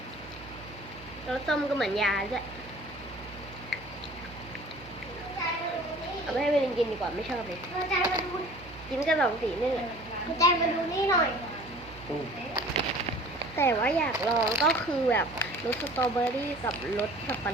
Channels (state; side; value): noise; right; hum, 18 dB below the sound